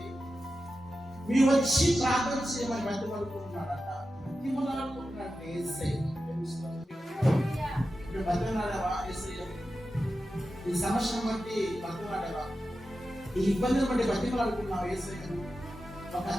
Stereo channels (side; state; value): both; normal; correlation 0.92